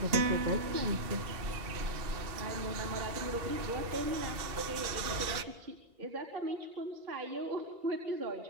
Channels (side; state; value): left; late; 2.6 ms